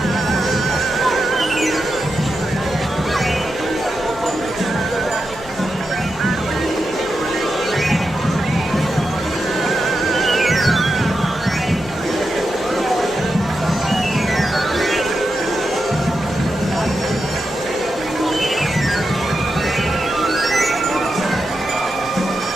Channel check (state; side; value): normal; both; correlation 0.87